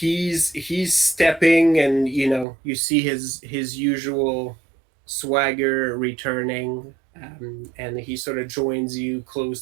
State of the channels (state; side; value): drops out; left; at 2.5 s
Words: stepping, and you see his usual swagger returning, and he sort of joins you